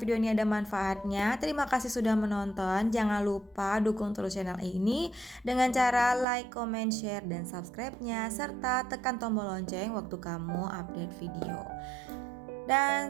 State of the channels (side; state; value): left; drops out; at 6.2 s